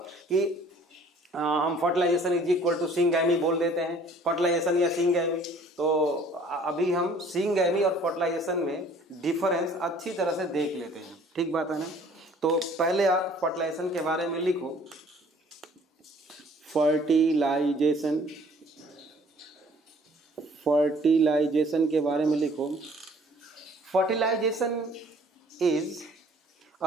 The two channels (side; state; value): both; normal; correlation 0.55